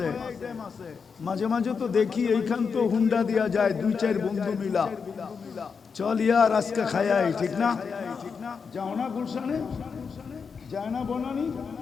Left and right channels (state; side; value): quieter; right; 5.7 dB